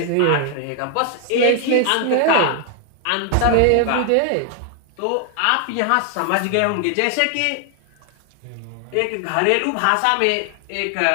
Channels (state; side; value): different; both; correlation 0.00